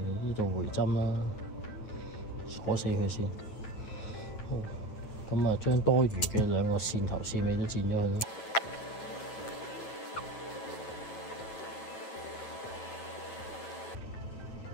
度回針啦，鎖死佢先。好，咁將多餘嘅兩個線頭線尾都剪咗佢啦。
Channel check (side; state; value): right; late; 9.1 ms